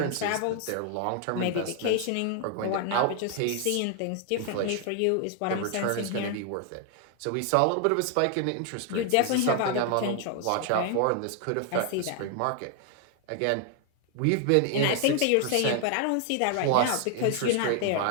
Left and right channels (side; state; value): both; different; correlation 0.00